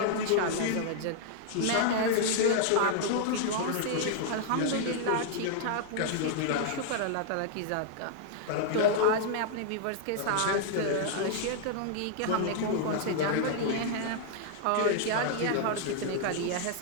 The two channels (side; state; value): both; different; correlation -0.01